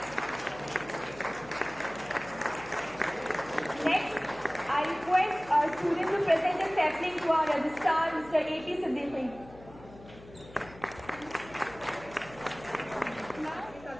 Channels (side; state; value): left; noise; hum, 19 dB below the sound